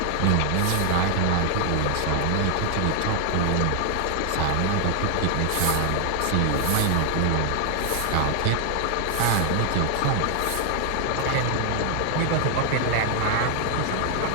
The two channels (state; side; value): different; both; correlation 0.00